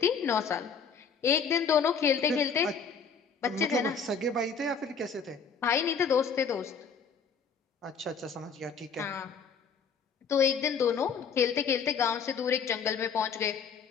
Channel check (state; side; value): quieter; right; 6.0 dB